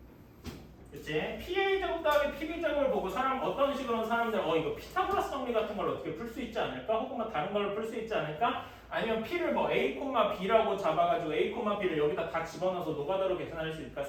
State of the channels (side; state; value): both; identical; correlation 1.00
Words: 그치? PA 제곱 더하기 PB 제곱을 보고 어떤 식으로 사람들 이거 피타고라스 정리 같은 걸 어떻게 풀 수 있지 않을까? 혹은 뭐 다른 걸로 풀 수 있지 않을까? 아니면 P를 뭐 A, B라고 잡아가지고 A, B를 여기다 다 집어넣어서 노가다로 계산할 수 있을까